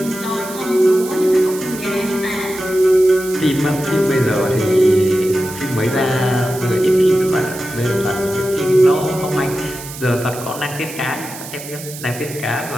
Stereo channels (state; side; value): noise; right; hiss, 13 dB below the sound